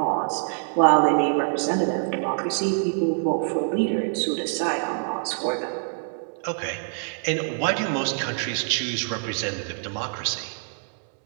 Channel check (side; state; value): left; silent; 62 dB below the other